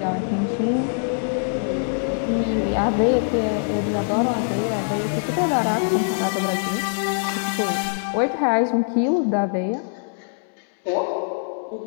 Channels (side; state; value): right; silent; 63 dB below the other